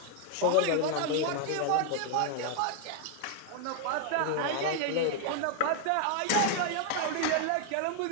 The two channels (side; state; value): both; different; correlation 0.00